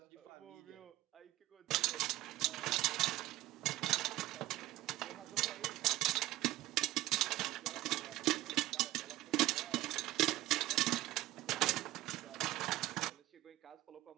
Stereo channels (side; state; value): left; quieter; 16.5 dB